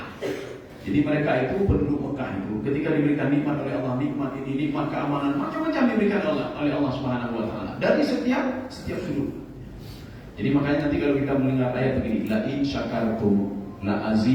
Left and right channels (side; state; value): both; identical; correlation 1.00